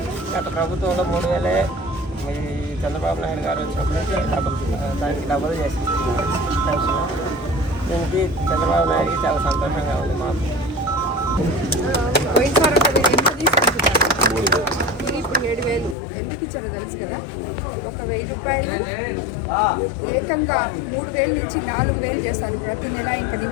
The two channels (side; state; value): right; drops out; at 16.0 s